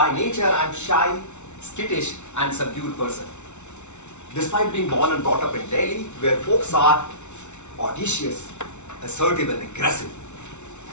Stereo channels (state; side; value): late; right; 0.82 ms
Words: nature, I'm shy, skittish, and subdued person. Despite being born and brought up in Delhi, where folks are audacious, assertive, and aggressive.